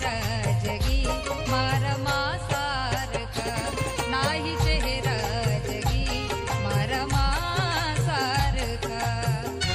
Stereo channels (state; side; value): identical; both; correlation 1.00